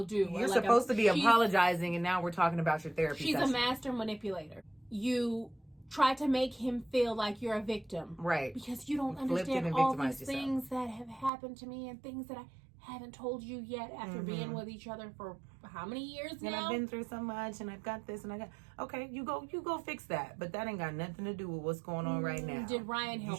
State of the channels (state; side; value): drops out; left; at 11.3 s